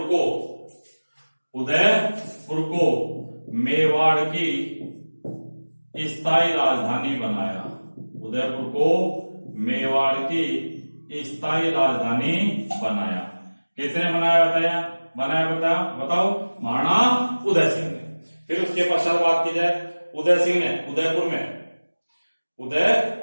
को मेवाड़ की स्थायी राजधानी बनाया। उदयपुर को मेवाड़ की स्थायी राजधानी बनाया। किसने बताओ? महाराणा उदय सिंह ने। फिर उसके पश्चात बात की जाए, उदय सिंह ने उदयपुर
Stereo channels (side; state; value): both; inverted; correlation -1.00